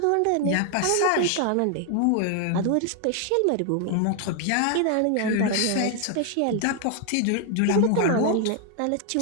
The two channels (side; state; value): both; different; correlation 0.00